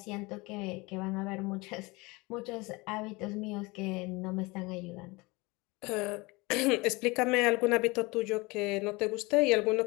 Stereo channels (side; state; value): right; quieter; 24.5 dB